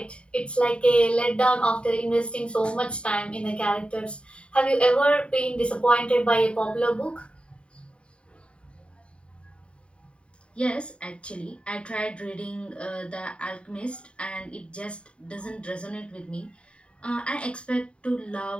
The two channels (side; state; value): right; late; 0.057 ms